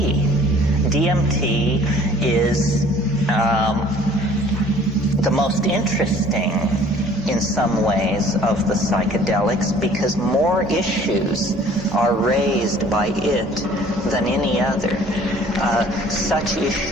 DMT is the most interesting in some ways of the psychedelics because more issues are raised by it than any other. Such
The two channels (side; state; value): both; normal; correlation 0.53